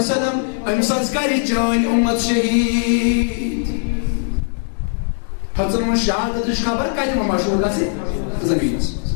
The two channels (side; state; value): right; silent; digital silence